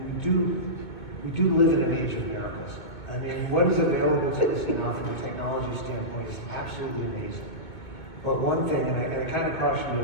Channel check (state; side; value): late; right; 2.0 ms